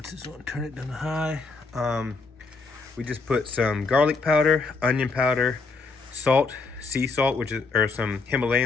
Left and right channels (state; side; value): quieter; right; 4.1 dB